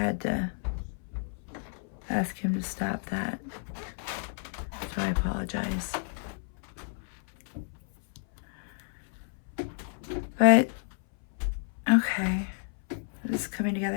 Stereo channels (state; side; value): silent; right; 57 dB below the other